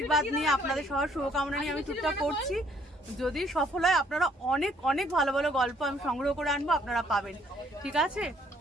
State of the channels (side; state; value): both; normal; correlation 0.64